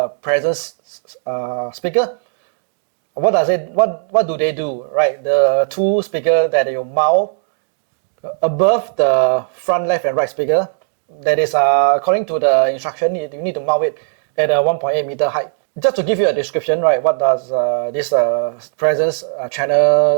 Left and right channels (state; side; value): silent; left; digital silence